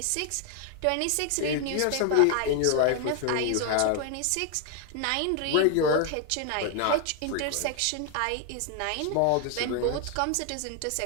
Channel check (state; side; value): different; both; correlation 0.00